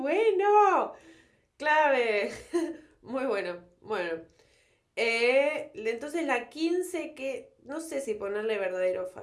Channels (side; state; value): both; identical; correlation 1.00